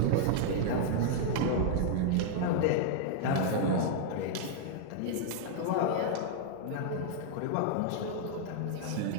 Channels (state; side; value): different; both; correlation -0.01